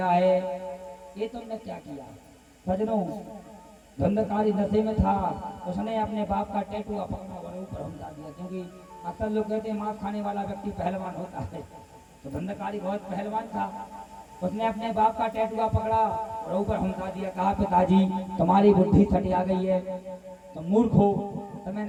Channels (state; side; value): identical; both; correlation 1.00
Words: है, ये तुमने क्या किया? सजनों, धंधकारी नशे में था, उसने अपने बाप का टैटू पकड़ा और ऊपर हमला दिया, क्योंकि अक्सर लोग कहते हैं मांस खाने वाला व्यक्ति पहलवान होता है, तो धंधकारी बहुत पहलवान था। उसने अपने बाप का टैटू पकड़ा और ऊपर हमला दिया। कहा, पिताजी, तुम्हारी बुद्धि छटिया गई है, तुम मूर्ख हो, तुम्हें